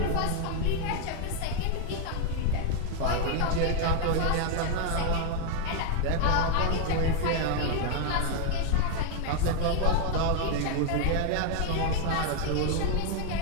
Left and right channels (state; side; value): different; both; correlation 0.00